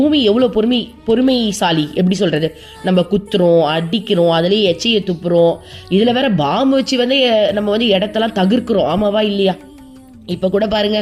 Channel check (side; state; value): both; identical; correlation 1.00